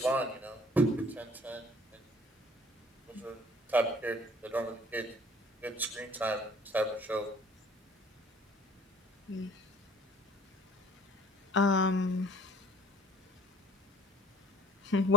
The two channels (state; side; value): normal; both; correlation 0.49